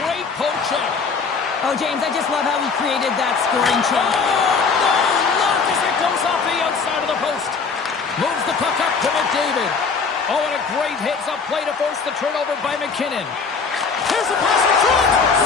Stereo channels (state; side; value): quieter; right; 5.1 dB